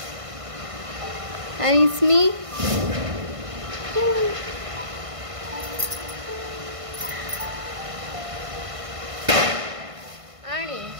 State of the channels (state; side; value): late; left; 1.5 ms